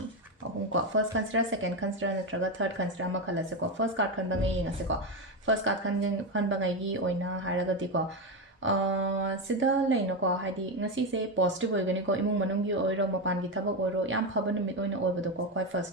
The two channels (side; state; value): both; normal; correlation 0.12